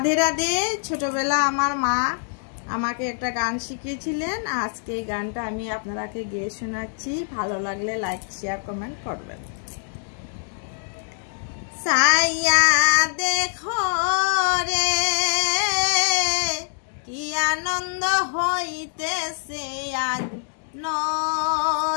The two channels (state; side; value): silent; right; digital silence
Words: রাধে। ছোটবেলা আমার মা আমাকে একটা গান শিখিয়েছিলেন। আজকে এই গানটা আমি আপনাদেরকে গেয়ে শোনাচ্ছি। ভালো লাগলে লাইক শেয়ার কমেন্ট করবেন। সাইয়া দেখো রে কি আনন্দ হইতেছে আজ